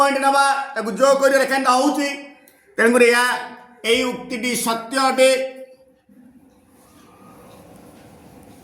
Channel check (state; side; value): identical; both; correlation 1.00